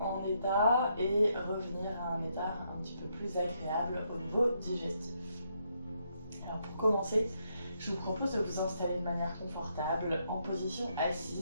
en état et revenir à un état un petit peu plus agréable au niveau digestif. Alors pour commencer, je vous propose de vous installer de manière confortable en position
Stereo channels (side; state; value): both; inverted; correlation -0.77